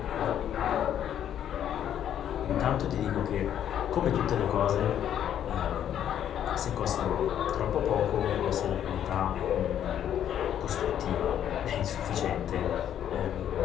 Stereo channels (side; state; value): right; quieter; 10.1 dB